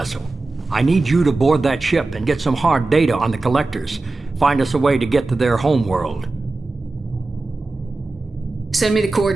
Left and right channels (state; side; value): quieter; left; 3.3 dB